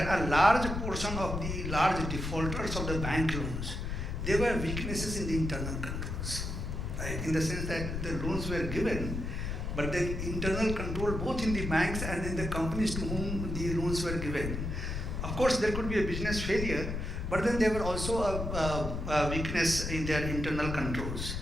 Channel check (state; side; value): noise; left; rumble, 4 dB below the sound